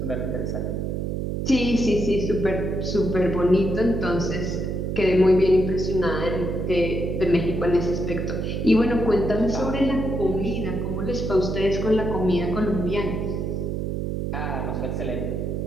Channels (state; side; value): noise; right; hum, 2 dB below the sound